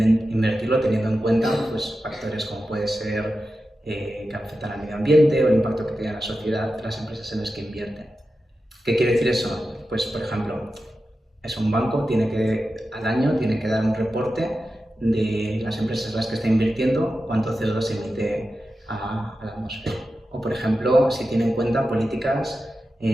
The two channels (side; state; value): both; normal; correlation 0.92